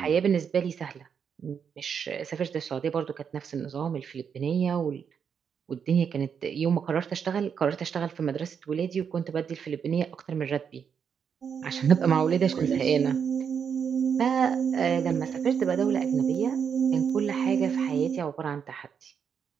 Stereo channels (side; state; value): left; quieter; 7.1 dB